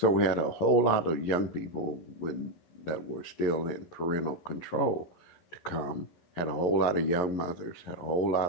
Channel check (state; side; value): late; right; 11 ms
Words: we had a whole lot of young people that were still in parental control to come, had a whole lot of young mothers, had a whole